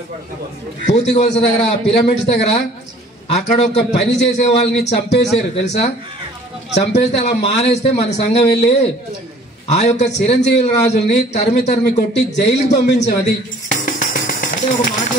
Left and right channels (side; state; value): both; normal; correlation 0.53